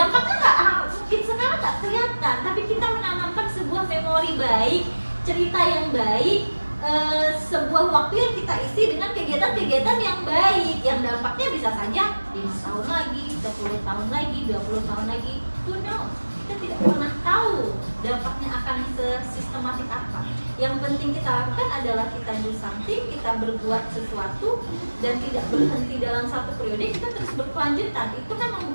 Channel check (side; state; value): both; inverted; correlation -1.00